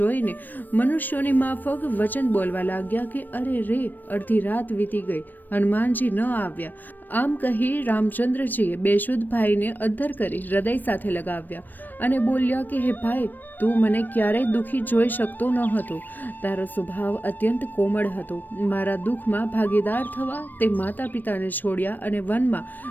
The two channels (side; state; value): right; late; 0.090 ms